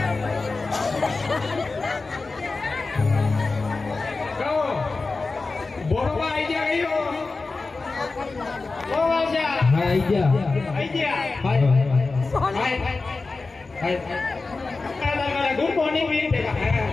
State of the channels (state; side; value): quieter; right; 3.8 dB